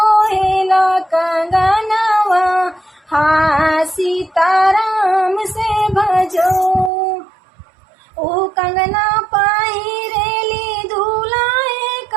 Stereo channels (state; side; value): drops out; left; at 6.9 s